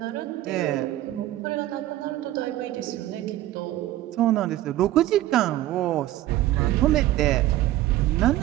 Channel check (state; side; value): quieter; left; 14.8 dB